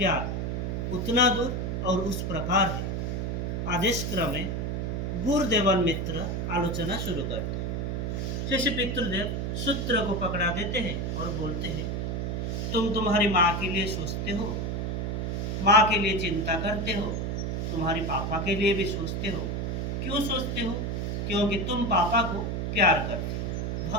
उतना दूर और उस प्रकार है। आदेश क्रम में गुरुदेवन मित्र आलोचना शुरू करते हैं। जैसे पितृदेव सूत्र को पकड़ा देते हैं और बोलते हैं, तुम तुम्हारी माँ के लिए सोचते हो, माँ के लिए चिंता करते हो, तुम्हारी पापा के लिए भी सोचते हो। क्यों सोचते हो? क्योंकि तुम पापा को प्यार करते हो,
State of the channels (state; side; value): noise; right; hum, 1 dB below the sound